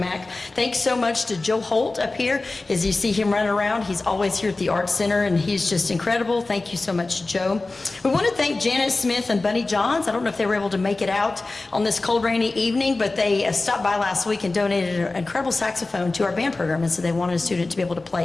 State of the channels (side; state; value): right; quieter; 3.3 dB